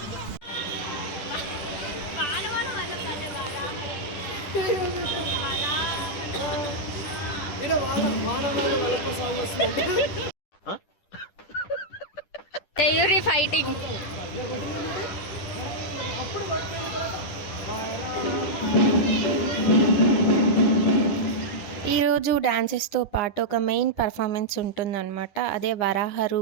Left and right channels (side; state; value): right; late; 10 ms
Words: తెయూరి ఫైటింగ్. ఈరోజు డాన్సెస్తో పాటు ఒక మెయిన్ పర్ఫార్మెన్స్ ఉంటుందన్నమాట. అదే వరాహ